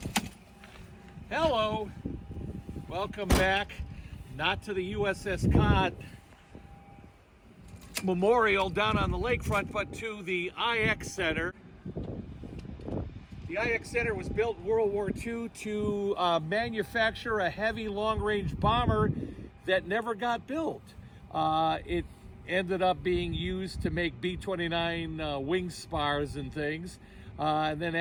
Hello. Welcome back, not to the USS Cod Memorial down on the lakefront, but to the IX Center. The IX Center was built in World War II to manufacture a heavy long-range bomber that never got built. It ended up being used to make B-29 wing spars and things. And then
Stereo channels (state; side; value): identical; both; correlation 1.00